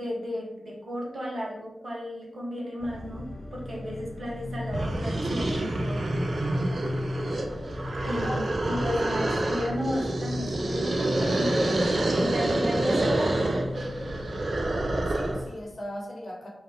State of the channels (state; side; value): normal; both; correlation 0.94